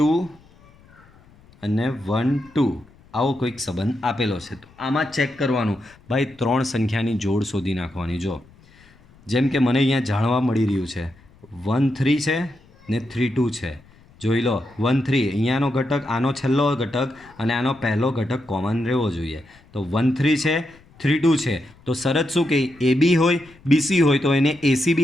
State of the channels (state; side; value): noise; left; rumble, 27 dB below the sound